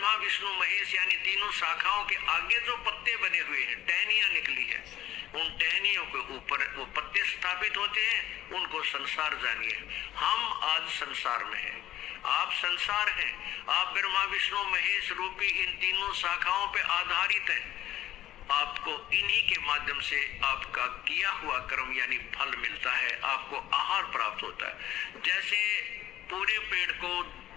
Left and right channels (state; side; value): quieter; right; 13.4 dB